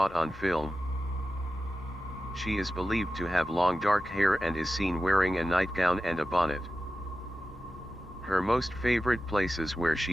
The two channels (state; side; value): normal; both; correlation 0.94